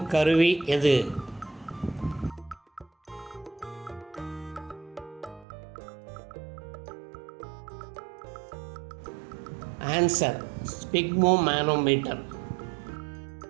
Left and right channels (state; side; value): drops out; left; at 5.5 s